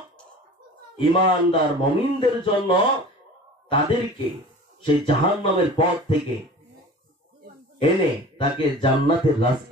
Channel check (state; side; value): normal; both; correlation 0.40